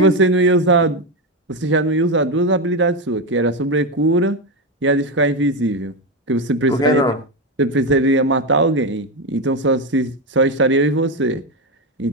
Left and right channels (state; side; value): normal; both; correlation 0.11